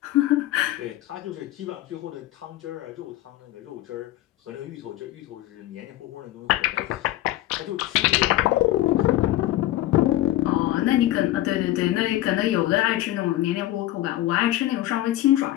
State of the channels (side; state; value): right; quieter; 15.4 dB